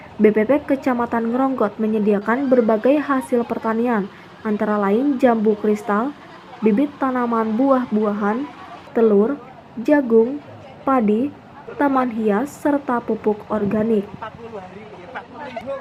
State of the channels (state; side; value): identical; both; correlation 1.00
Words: BPP Kecamatan Ngeronggot menyediakan berbagai hasil pertanian, antara lain jambu kristal, bibit tanaman buah-buahan, telur, jagung, padi, taman hias, serta pupuk organik.